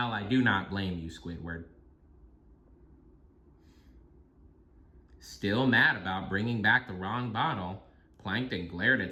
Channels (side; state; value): both; identical; correlation 1.00